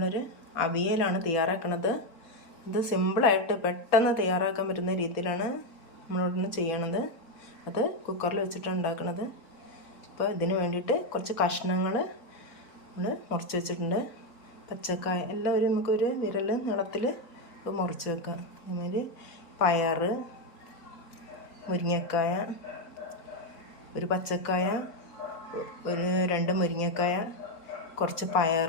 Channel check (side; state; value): right; late; 4.1 ms